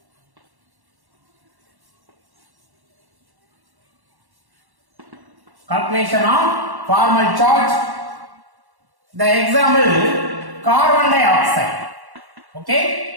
Calculation of formal charge. The example, carbon dioxide.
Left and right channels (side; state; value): left; late; 1.1 ms